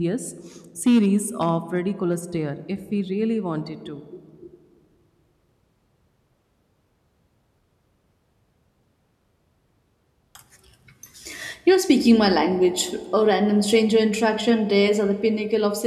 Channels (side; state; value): both; identical; correlation 1.00